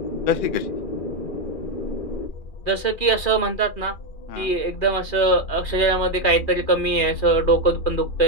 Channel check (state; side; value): late; right; 2.4 ms